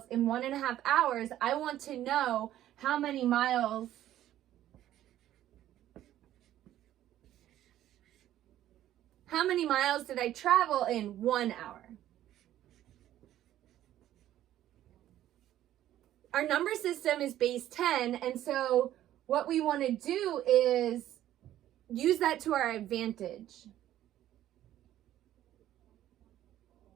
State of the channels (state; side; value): quieter; left; 12.7 dB